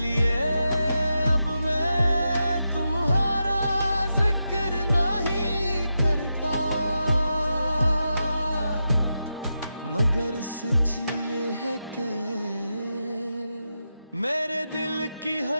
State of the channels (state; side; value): inverted; both; correlation -0.88